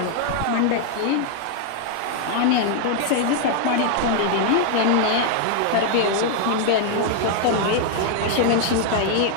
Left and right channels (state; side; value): different; both; correlation 0.00